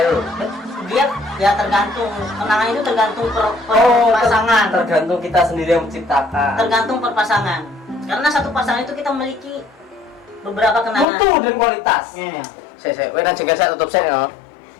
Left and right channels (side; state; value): right; drops out; at 11.1 s